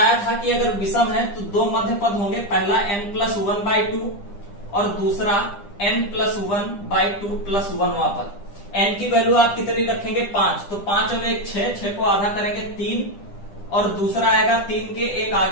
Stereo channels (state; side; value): late; right; 9.9 ms